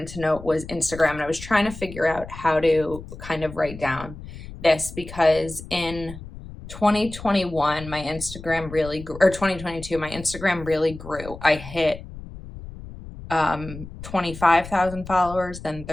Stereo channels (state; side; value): noise; left; rumble, 13 dB below the sound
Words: to note was Instagram, and I was trying to figure out how to kind of write down this because in 2021, my Instagram really grew, or 2022, my Instagram really grew. I hit 25,000 followers, then